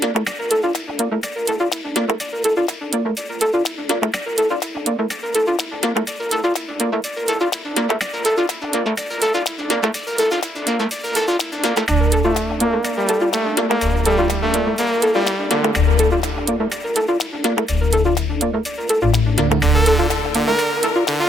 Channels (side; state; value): both; normal; correlation 0.78